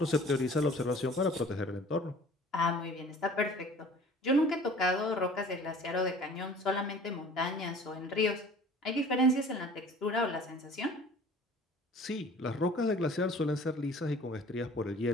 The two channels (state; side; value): normal; both; correlation 0.47